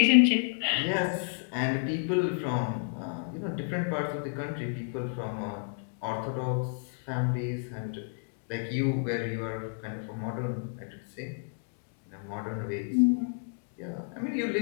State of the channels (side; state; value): right; silent; digital silence